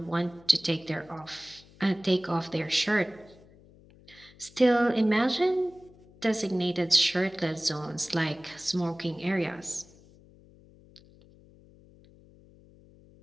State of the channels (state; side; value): noise; left; hum, 25 dB below the sound